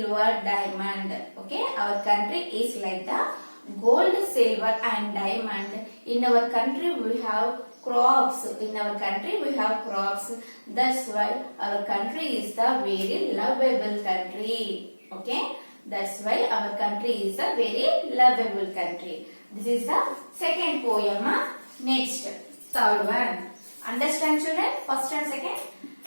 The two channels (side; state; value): both; inverted; correlation -1.00